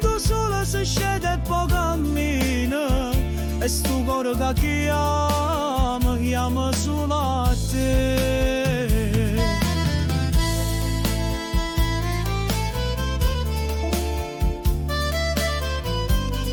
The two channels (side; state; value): both; identical; correlation 1.00